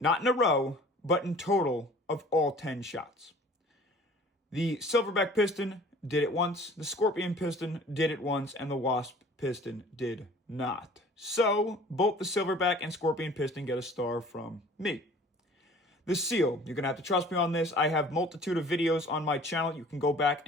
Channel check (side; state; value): both; normal; correlation 0.48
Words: not in a row, but in total of all 10 shots. The Silverback piston did it once, the Scorpion piston did it once, and the Wasp piston did not. So, both the Silverback and Scorpion piston get a star from me. The seal, you're going to have to trust me on this. I have multitude of videos on my channel. You can go back